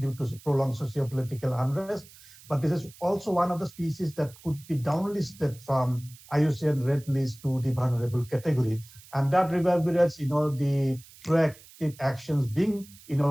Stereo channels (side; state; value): right; noise; hiss, 22 dB below the sound